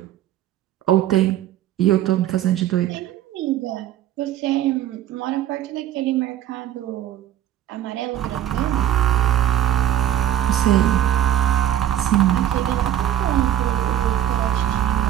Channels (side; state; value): left; quieter; 11.7 dB